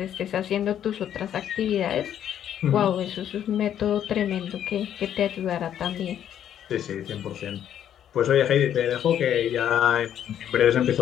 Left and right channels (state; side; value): quieter; right; 10.1 dB